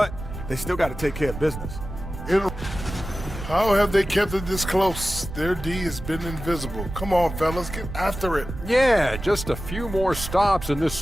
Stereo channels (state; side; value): noise; right; rumble, 9 dB below the sound